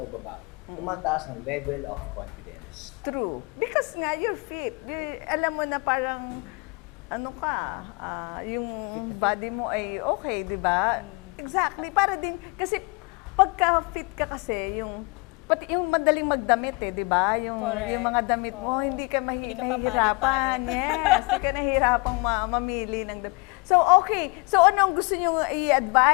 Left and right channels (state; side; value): quieter; right; 28.7 dB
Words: babae, tumataas ng level of confidence. true. Because nga, you're fit. Alam mo na parang, yung body mo ay okay, di ba? Exactly. Para din, kasi pagka fit ka kasi, pati yung madaling magdamit di ba? Yung mga damit mo, Oo. hindi ka Hindi ka mahirapan. papalit-palit. Yes, hindi ka nahihirapang mamili ng damit. So, okay. So, ano ang gusto niyo